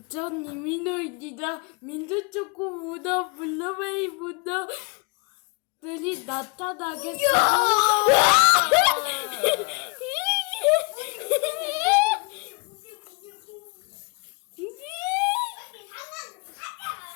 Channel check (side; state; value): right; quieter; 30.6 dB